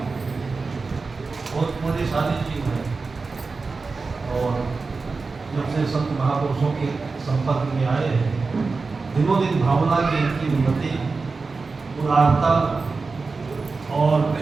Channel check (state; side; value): quieter; left; 4.2 dB